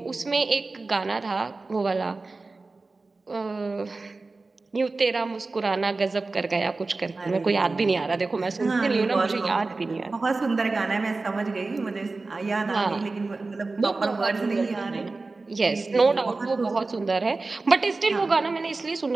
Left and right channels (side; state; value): left; quieter; 3.6 dB